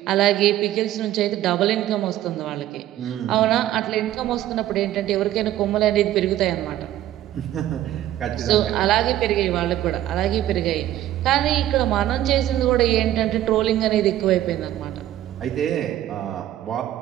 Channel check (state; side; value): quieter; left; 13.2 dB